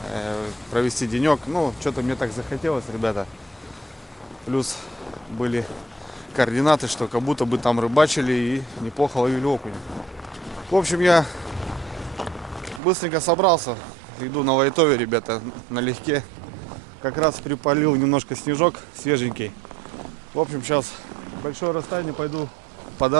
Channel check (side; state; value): left; drops out; at 12.8 s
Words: Провести денек. Ну, что-то мне так захотелось, ребята. Плюс были координаты, что как будто бы там рыбачили и неплохо ловили окунь. В общем, я быстренько собрался. Иду на лайтове, ребята, налегке. Как раз припалил немножко снежок свеженький. В общем, сейчас большое расстояние пойду по